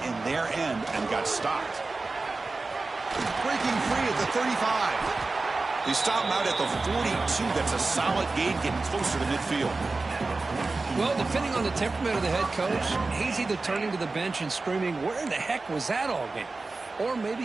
in their end and got stopped. Breaking free at the 35. They stop him out at the 42. That's a solid gain, getting closer to midfield. Well, depending on the temperament of the head coach, he's either turning to the bench and screaming, where in the heck was that all game? Or maybe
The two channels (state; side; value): quieter; left; 3.6 dB